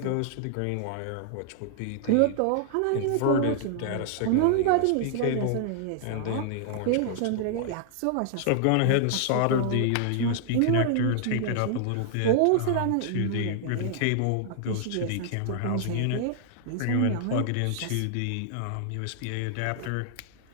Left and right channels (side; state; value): both; different; correlation -0.01